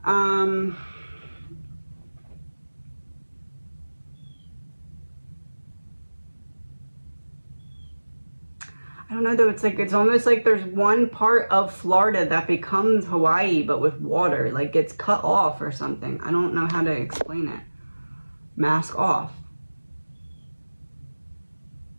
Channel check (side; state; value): both; inverted; correlation -1.00